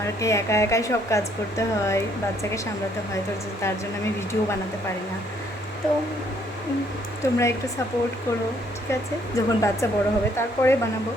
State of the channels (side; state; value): both; normal; correlation 0.66